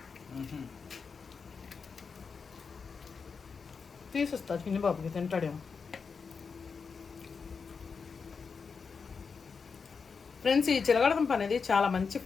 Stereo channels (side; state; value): right; quieter; 5.4 dB